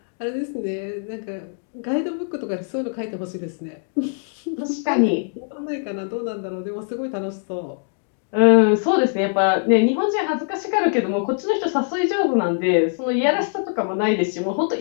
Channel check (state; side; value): silent; right; digital silence